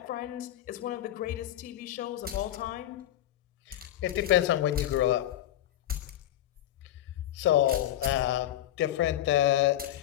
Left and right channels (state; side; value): quieter; right; 12.8 dB